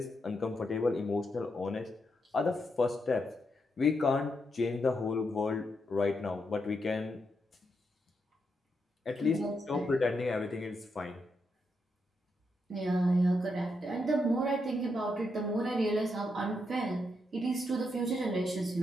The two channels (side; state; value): both; normal; correlation 0.82